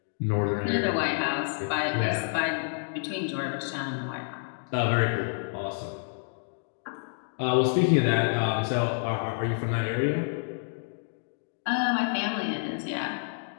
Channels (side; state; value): right; silent; digital silence